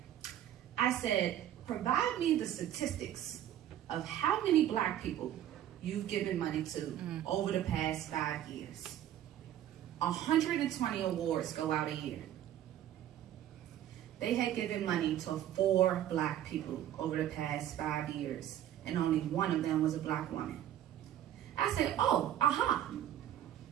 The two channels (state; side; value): quieter; left; 11.6 dB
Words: I said, provide me the statistics of how many Black people you've given money to over the past 5 years. 120 awards go out a year. They had given money to 4 Black people over the past 5 years, and only one of them was a Black woman. I said, oh, aha,